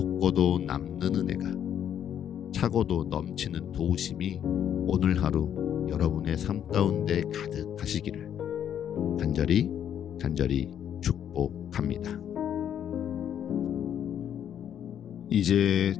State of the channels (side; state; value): right; quieter; 9.5 dB